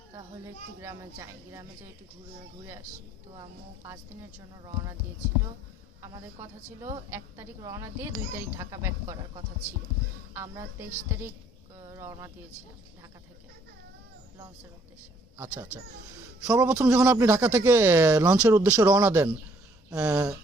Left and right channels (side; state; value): both; normal; correlation 0.63